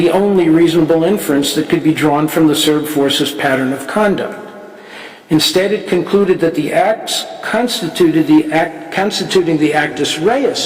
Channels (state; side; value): identical; both; correlation 1.00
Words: only reasonable inference that could be drawn from the Serb forces' pattern of conduct. Instead, it concluded that the acts constituting the actus